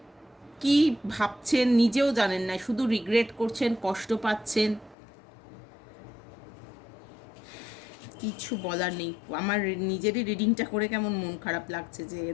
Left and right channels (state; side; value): drops out; right; at 5.0 s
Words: কি ভাবছেন নিজেও জানেন না, শুধু রিগ্রেট করছেন, কষ্ট পাচ্ছেন, কিছু বলার নেই। আমার নিজেরই রিডিংটা করে কেমন মন খারাপ লাগছে যে